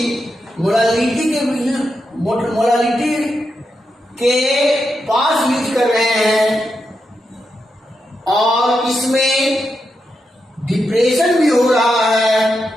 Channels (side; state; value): both; normal; correlation 0.86